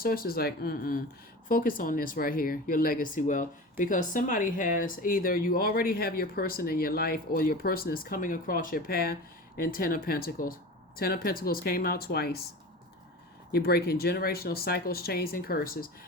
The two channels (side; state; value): both; normal; correlation 0.33